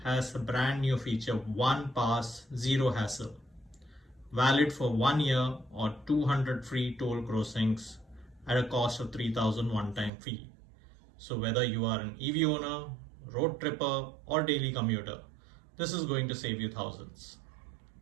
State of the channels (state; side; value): drops out; left; at 10.1 s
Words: has a brand new feature, one pass, zero hassle. Valid for 1 year or 200 free toll crossings at a cost of 3000 one-time fee. So whether you are an EV owner, road tripper or daily commuter, this is going to save you thousands.